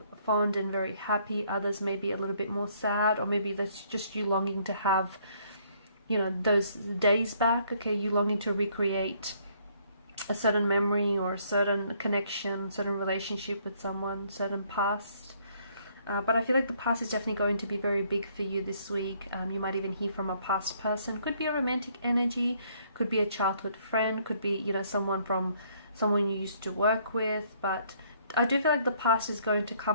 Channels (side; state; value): both; inverted; correlation -0.65